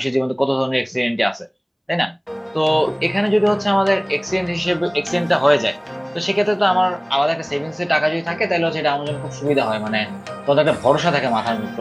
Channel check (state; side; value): identical; both; correlation 1.00